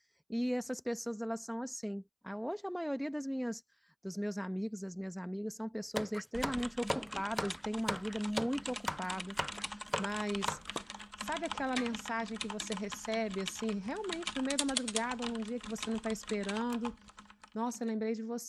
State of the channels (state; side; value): identical; both; correlation 1.00